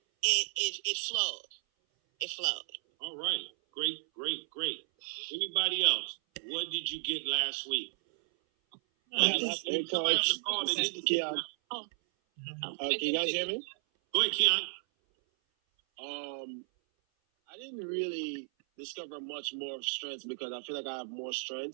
It flowed. It flowed. All right. Great. Anybody else? What did you get last week? Hey, Coach. This is Keon. Can you guys hear me? Go ahead, Keon. I didn't really discover much more strengths because I feel like I have more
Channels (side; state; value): left; silent; 55 dB below the other